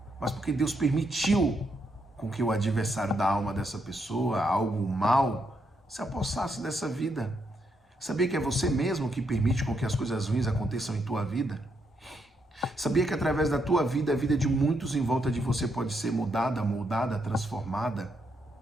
mas porque Deus permitiu com que o adversário da alma dessa pessoa, algo mal, se apossasse dessa vida. Sabia que é você mesmo que permite com que as coisas ruins aconteçam em tua vida? Sabia que através da tua vida, a vida de muitos em volta de você pode ser mudada, moldada, transformada?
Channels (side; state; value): both; normal; correlation 0.78